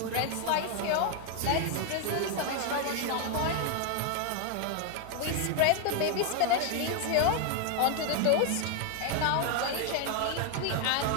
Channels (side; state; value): both; different; correlation 0.00